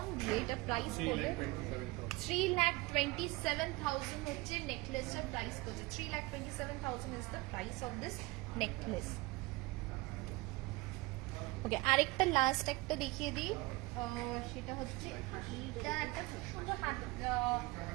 দিয়ে এটা প্রাইস পড়বে 3,27,000 হচ্ছে নেকলেসটার প্রাইস পড়ছে। 3,27,000 is the price of this necklace. Okay, আরেকটা লাস্ট একটা দেখিয়ে দিই, সেটা হচ্ছে এইটা একটা খুব সুন্দর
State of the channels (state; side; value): quieter; left; 22.5 dB